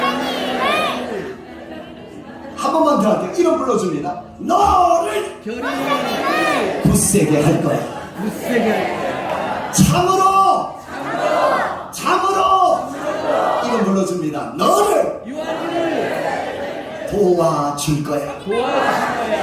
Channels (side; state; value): both; identical; correlation 1.00